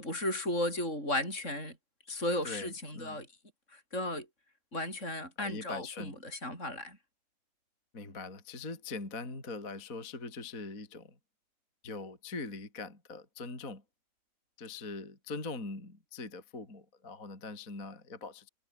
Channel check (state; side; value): late; right; 3.6 ms